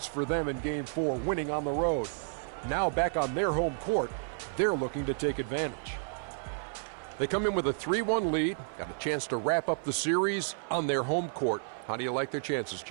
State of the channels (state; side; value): silent; left; 57 dB below the other